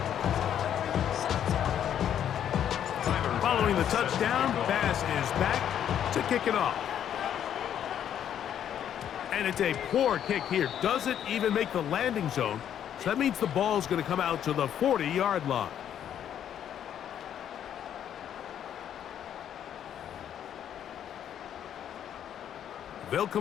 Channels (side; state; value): right; quieter; 9.8 dB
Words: Following the touchdown, Bass is back to kick it off. And it's a poor kick here. Doesn't even make the landing zone. So that means the ball's going to come out to the 40-yard line. They'll